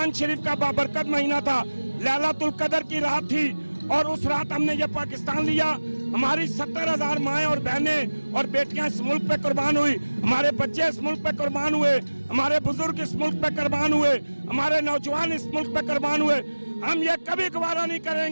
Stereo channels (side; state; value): both; inverted; correlation -1.00